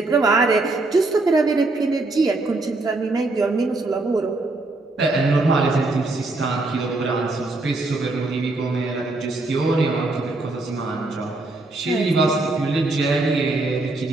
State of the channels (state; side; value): quieter; left; 3.1 dB